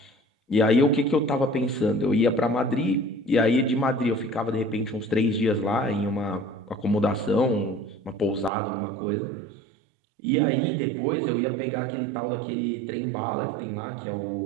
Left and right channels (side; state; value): left; drops out; at 8.5 s